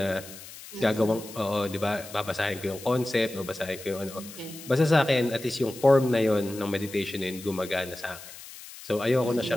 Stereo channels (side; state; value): left; noise; hiss, 15 dB below the sound